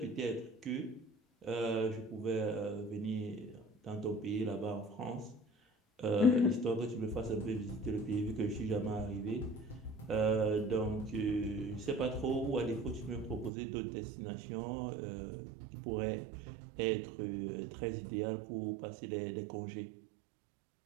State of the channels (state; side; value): drops out; left; at 13.5 s